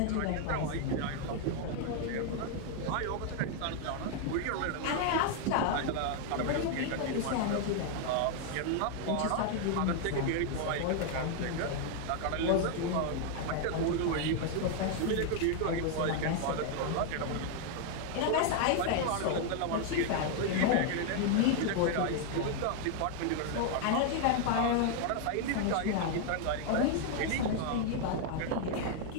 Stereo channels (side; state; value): both; different; correlation 0.00